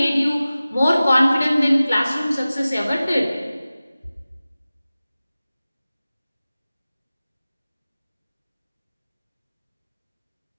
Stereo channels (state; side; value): inverted; both; correlation -0.96